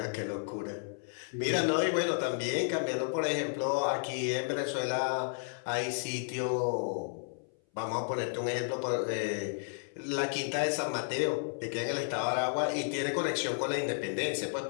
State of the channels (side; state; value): right; silent; 56 dB below the other